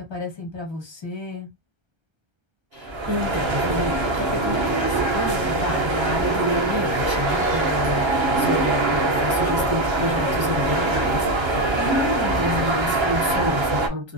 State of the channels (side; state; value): left; late; 1.3 ms